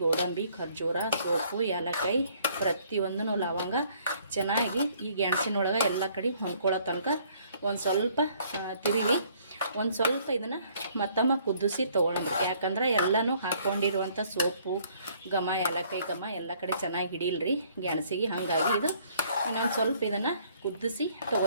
ಗೋಡಂಬಿ, ಖರ್ಜೂರ, ಸೋಪು, ಏಲಕ್ಕಾಯಿ, ಪ್ರತಿಯೊಂದೂ ಲವಂಗ ಚೆನ್ನಾಗಿ ಈ ಗೆಣಸಿನೊಳಗೆ ಎಲ್ಲ ಕಡೆ ಹೊಂದ್ಕೊಳ್ಳೋ ತನಕ ಒಂದು ಸ್ವಲ್ಪ ತಿರುವಿ ಒಂದು ಸ್ವಲ್ಪ ಇದನ್ನು ಮತ್ತೊಮ್ಮೆ ಕುದಿಸಿ ತೊಗೊಳಂಬ್ರಿ. ಯಾಕಂದ್ರೆ ಎಲ್ಲನೂ ಹಾಕ್ಕೊಂಡಿರುವಂಥ ಸೋಪು ಘಮ, ಏಲಕ್ಕಾಯಿ ಘಮ ಎಲ್ಲ ಕಡೆ ಚೆನ್ನಾಗಿ ಹಿಡಿಲ್ರಿ ಗೆಣಸಿಗೆ. ಹಾಗಾಗಿ ಇದು ಇನ್ನೊಂದು ಸ್ವಲ್ಪ ಇದನ್ನು ಕುದಿಸಿ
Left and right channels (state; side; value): inverted; both; correlation -0.62